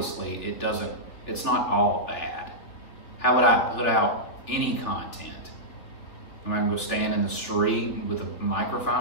it's not all bad. How would I put out any content? Am I gonna go stand in the street with a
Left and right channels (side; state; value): right; late; 3.3 ms